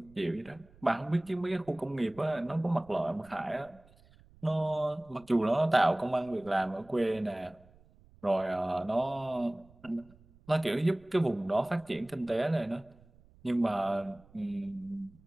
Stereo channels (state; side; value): noise; right; rumble, 26 dB below the sound